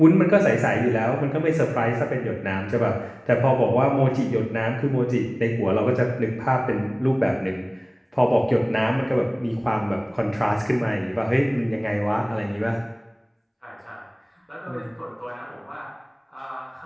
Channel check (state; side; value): identical; both; correlation 1.00